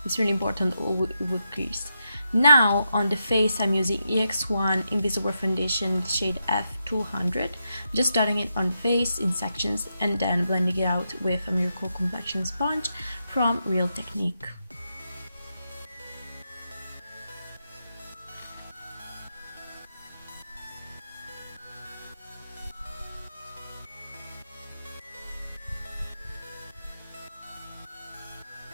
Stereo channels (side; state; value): both; inverted; correlation -0.84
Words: It's really important, or it would crease. Now on the face, I'm using EX1 Invisiwear Foundation shade F200, just dotting it on the face in sections and then blending it out with a Miracle Complexion sponge from Real Technique.